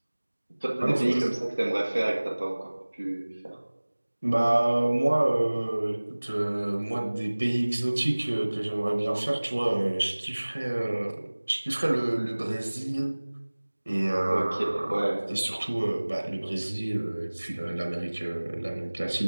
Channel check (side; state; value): both; inverted; correlation -1.00